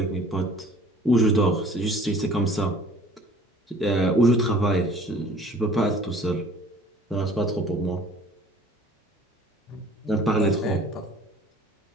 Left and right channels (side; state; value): both; normal; correlation 0.50